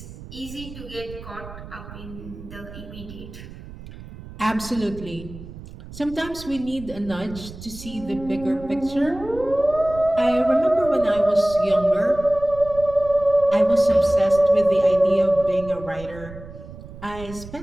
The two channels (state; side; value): noise; right; rumble, 15 dB below the sound